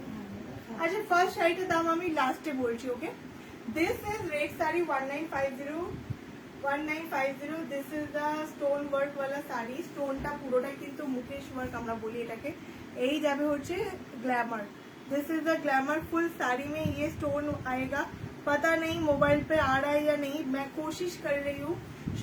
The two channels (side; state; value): both; identical; correlation 1.00